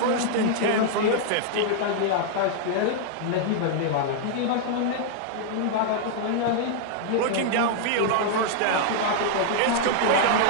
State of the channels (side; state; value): both; different; correlation -0.01